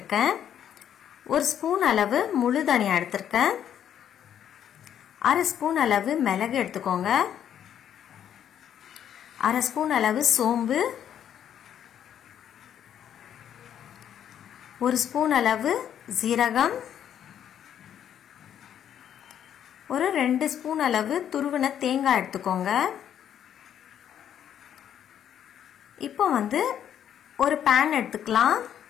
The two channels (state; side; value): quieter; right; 9.7 dB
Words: ஒரு ஸ்பூன் அளவு முழு தனியா எடுத்திருக்கேன். அரை ஸ்பூன் அளவு மிளகு எடுத்துக்கோங்க. அரை ஸ்பூன் அளவு சோம்பு, ஒரு ஸ்பூன் அளவு ஜீரகம், ஒரு 2 ஸ்பூன் அளவு துருவின தேங்காய் எடுத்துக்கோங்க. இப்போ ஒரு பேன் எடுத்துக்கலாம்.